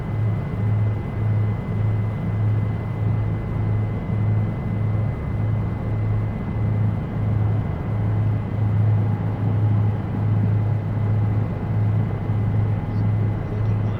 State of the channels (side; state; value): both; identical; correlation 1.00